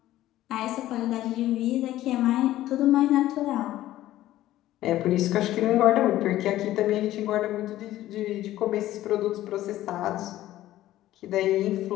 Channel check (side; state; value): right; quieter; 14.4 dB